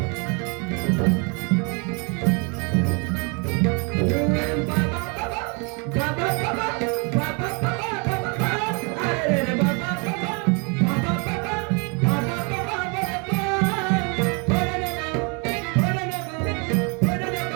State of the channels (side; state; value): left; quieter; 33.3 dB